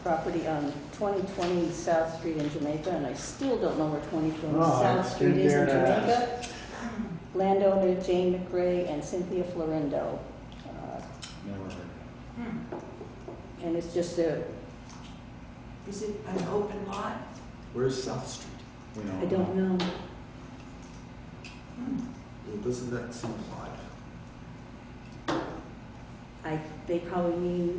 property on 2020 South Street in Jamaica, and I still don't know where 2020 No, I South Street didn't is in dare to ask. Jamaica. Landowner Jane McRae and Cynthia Florindo. Never heard of it. And it's just a, Is it an open lot? Where's South Street? We don't I don't know. Well, doesn't that seem odd? They probably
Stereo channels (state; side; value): identical; both; correlation 1.00